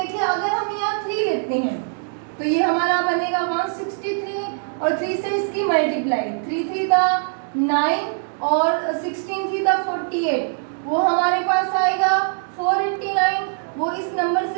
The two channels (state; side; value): silent; left; digital silence